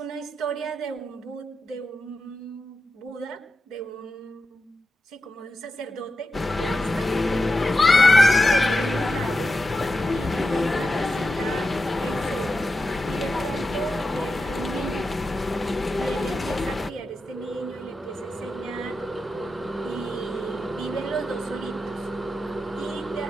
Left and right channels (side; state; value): both; normal; correlation 0.90